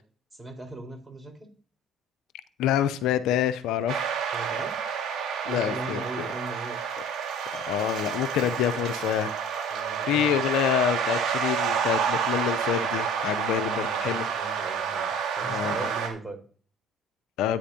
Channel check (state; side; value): normal; both; correlation 0.42